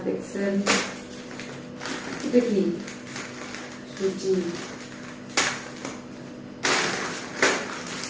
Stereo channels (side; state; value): both; identical; correlation 1.00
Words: এক্সেল, এটা কি সুজি,